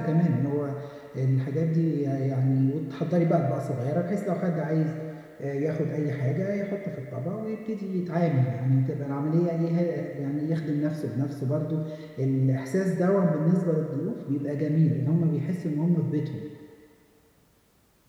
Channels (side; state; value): both; identical; correlation 1.00